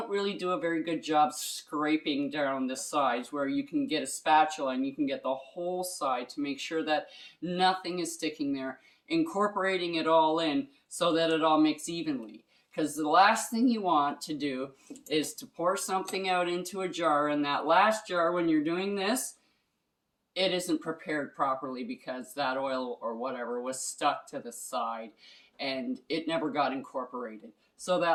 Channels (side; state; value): both; identical; correlation 1.00